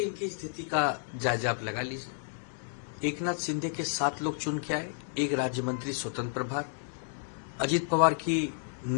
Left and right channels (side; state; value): right; silent; digital silence